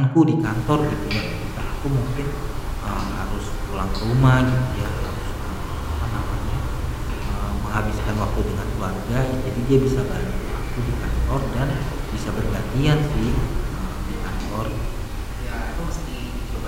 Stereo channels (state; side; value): identical; both; correlation 1.00